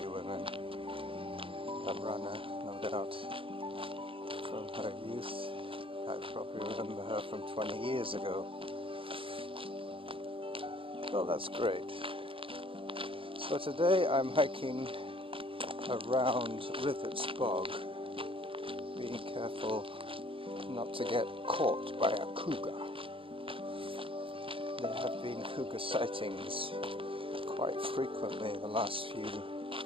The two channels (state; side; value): late; left; 0.26 ms